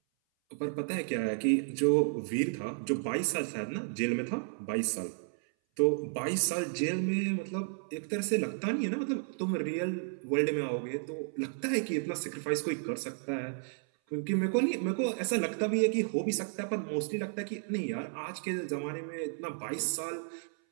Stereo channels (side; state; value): left; silent; 56 dB below the other